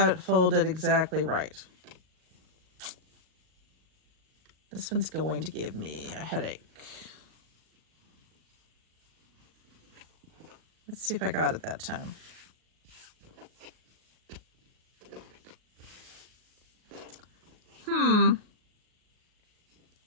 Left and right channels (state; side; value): late; left; 38 ms